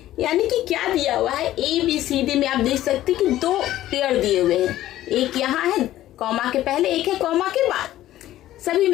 यानी कि क्या दिया हुआ है, ए बी सी डी में आप देख सकते हैं कि दो पेयर दिए हुए हैं, एक यहाँ है कॉमा के पहले, एक है कॉमा के बाद, सभी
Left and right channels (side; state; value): right; quieter; 14.0 dB